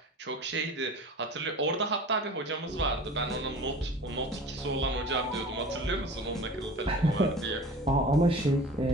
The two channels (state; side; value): normal; both; correlation 0.40